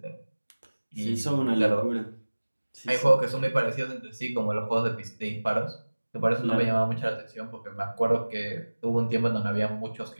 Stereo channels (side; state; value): both; inverted; correlation -1.00